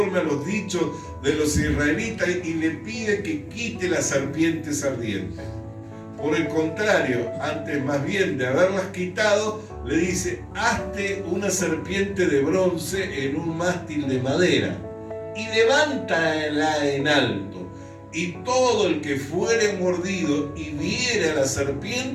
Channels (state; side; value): identical; both; correlation 1.00